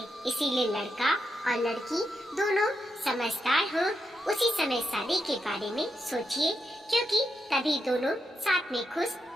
इसीलिए लड़का और लड़की दोनों समझदार हो उसी समय शादी के बारे में सोचिए, क्योंकि तभी दोनों साथ में खुश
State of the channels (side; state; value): both; normal; correlation 0.83